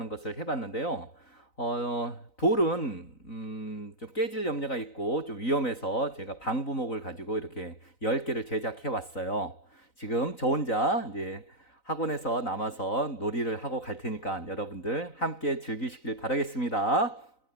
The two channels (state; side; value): late; right; 3.9 ms